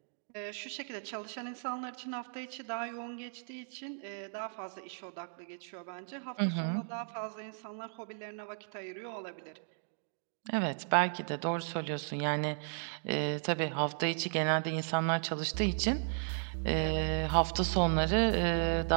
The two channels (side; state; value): left; silent; digital silence